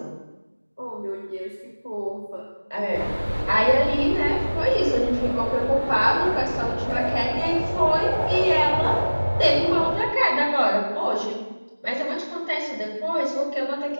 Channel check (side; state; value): both; inverted; correlation -1.00